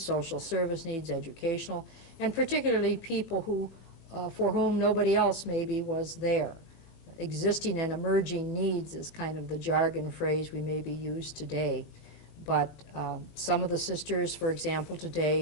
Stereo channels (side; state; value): right; late; 20 ms